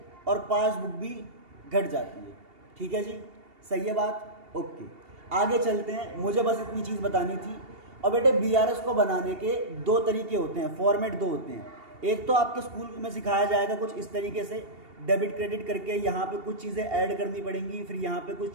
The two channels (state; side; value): late; left; 2.8 ms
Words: और पासबुक भी घट जाती है। ठीक है जी, सही है बात, ओके। आगे चलते हैं, मुझे बस इतनी चीज़ बतानी थी। और बेटे बीआरएस को बनाने के 2 तरीके होते हैं, फॉर्मेट 2 होते हैं। एक तो आपके स्कूल में सिखाया जाएगा कुछ इस तरीके से, डेबिट क्रेडिट करके यहाँ पे कुछ चीज़ें ऐड करनी पड़ेंगी, फिर यहाँ पे कुछ